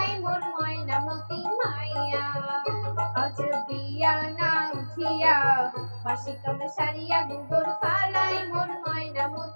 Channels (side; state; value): both; inverted; correlation -1.00